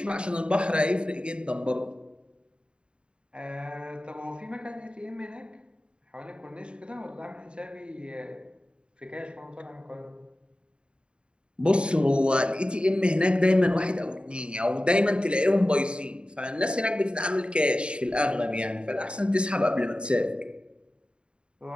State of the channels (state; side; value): late; left; 0.054 ms